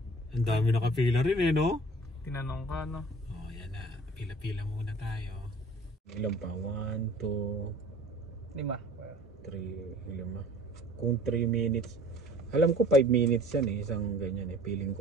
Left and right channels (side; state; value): both; normal; correlation 0.48